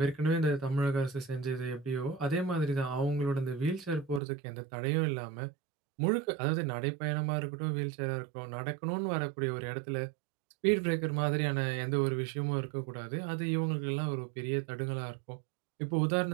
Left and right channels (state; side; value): drops out; left; at 4.2 s